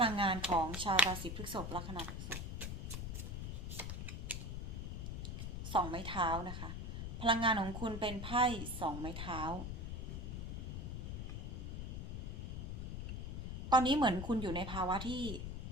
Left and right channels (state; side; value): noise; left; rumble, 5 dB below the sound